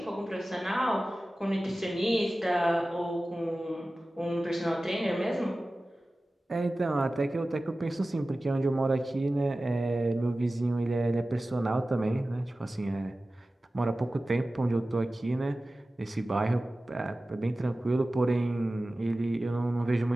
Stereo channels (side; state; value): both; normal; correlation 0.96